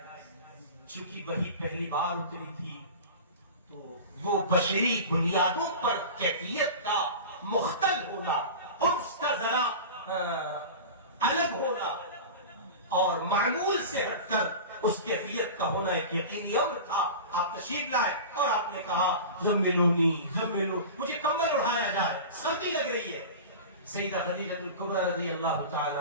چونکہ وہی پہلی بار اتری تھی تو وہ بشری بنیادوں پر کیفیت کا مختل ہونا، اس کا ذرا الگ ہونا اور معمول سے ہٹ کر اس کیفیت کا ہونا ایک یقینی امر تھا۔ آپ تشریف لائے اور آپ نے کہا زملونی زملو، مجھے کمبل اڑایا جائے، سردی لگ رہی ہے۔ سیدہ خدیجہ الکبریٰ رضی اللہ تعالی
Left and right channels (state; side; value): inverted; both; correlation -0.32